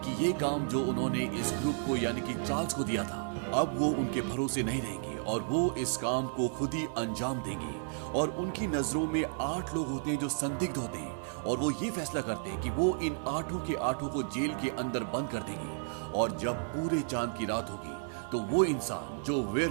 कि ये काम जो उन्होंने इस ग्रुप को यानी कि चार्ल्स को दिया था, अब वो उनके भरोसे नहीं रहेंगे और वो इस काम को खुद ही अंजाम देंगे। और उनकी नजरों में 8 लोग होते हैं जो संदिग्ध होते हैं और वो ये फैसला करते हैं कि वो इन 8 के 8 को जेल के अंदर बंद कर देंगे और जब पूरे चांद की रात होगी तो वो इंसान जो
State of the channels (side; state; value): left; silent; digital silence